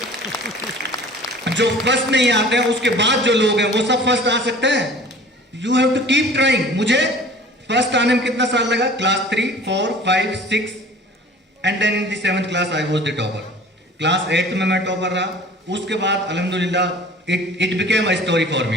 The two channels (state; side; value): normal; both; correlation 0.45